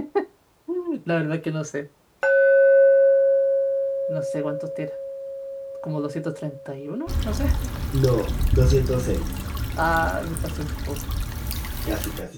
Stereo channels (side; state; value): both; identical; correlation 1.00